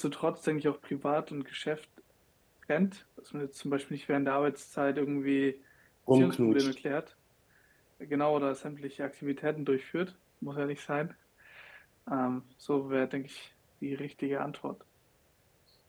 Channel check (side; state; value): both; identical; correlation 1.00